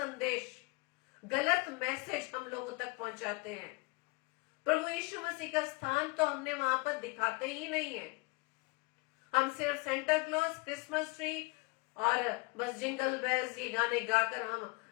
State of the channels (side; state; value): right; quieter; 26.6 dB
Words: गलत मैसेज हम लोगों तक पहुंचाते हैं। प्रभु यीशु मसीह का स्थान तो हमने वहां पर दिखाते ही नहीं है। हम सिर्फ सेंटा क्लॉज, क्रिसमस ट्री और बस जिंगल बेल्स ये गाने गाकर हम